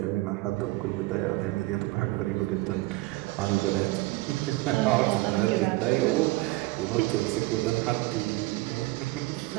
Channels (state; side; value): quieter; left; 20.8 dB